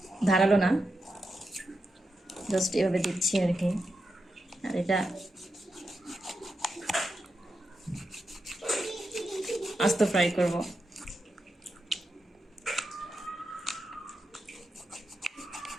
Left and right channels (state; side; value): normal; both; correlation 0.87